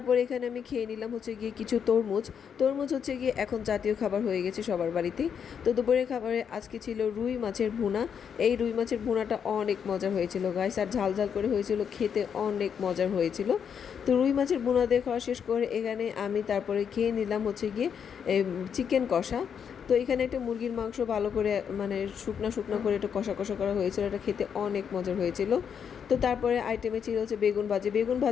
এখানে আমি খেয়ে নিলাম হচ্ছে গিয়ে কিছু তরমুজ। তরমুজ হচ্ছে গিয়ে এখন জাতীয় খাবার হয়ে গেছে সবার বাড়িতেই। তো দুপুরের খাবারে আজকে ছিল রুই মাছের ভুনা। এই রুই মাছের ভুনাটা অনেক মজার হয়েছিল গাইস, আর ঝাল ঝাল করে হয়েছিল, খেতে অনেক মজার হয়েছিল। তো রুই মাছের ভুনা দিয়ে খাওয়া শেষ করে এখানে আমি তারপরে খেয়ে নিলাম হচ্ছে গিয়ে চিকেন কষা। তো এখানে একটা মুরগির মাংস ভালো করে মানে শুকনো শুকনো করে একটু কষা কষা করা হয়েছিল, এটা খেতে অনেক মজার হয়েছিল। তো তারপরে আইটেমে ছিল হচ্ছে বেগুন ভাজি। বেগুন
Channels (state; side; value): quieter; right; 7.5 dB